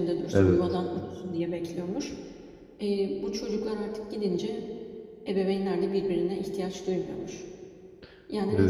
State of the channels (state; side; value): identical; both; correlation 1.00